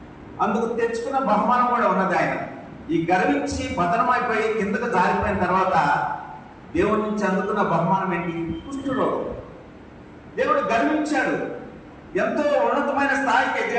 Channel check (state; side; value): identical; both; correlation 1.00